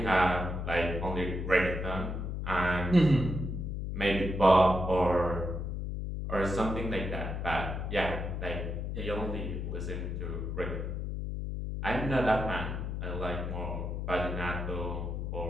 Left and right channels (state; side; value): noise; left; hum, 3 dB below the sound